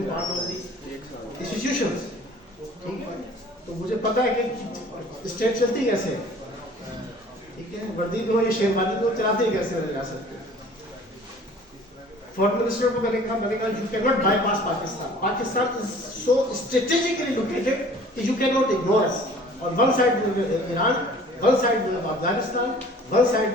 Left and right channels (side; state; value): both; normal; correlation 0.49